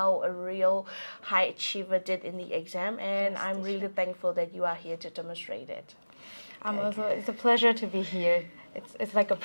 a real high achiever did in the exam, and I'm really thankful that you are here to demonstrate it. It's a pleasure to be here. It's like a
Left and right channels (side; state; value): both; inverted; correlation -1.00